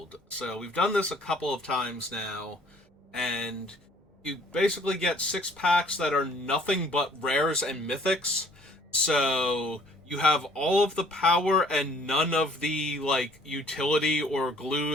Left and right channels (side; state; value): both; normal; correlation 0.57